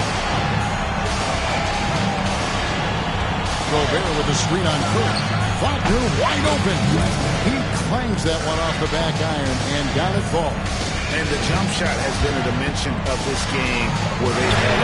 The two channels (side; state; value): both; identical; correlation 1.00